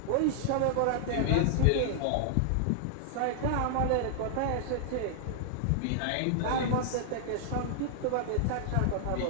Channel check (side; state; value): both; different; correlation -0.01